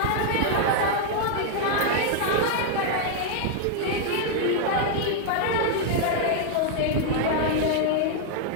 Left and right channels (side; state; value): both; different; correlation 0.00